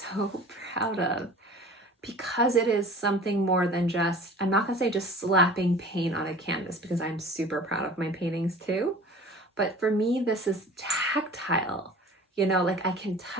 proud of, because it is something more than just, I'm not gonna say just slapping paint on a canvas, because I'm super proud of my paintings too. But for me, this is tactile, you know, like I can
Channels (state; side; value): normal; both; correlation 0.43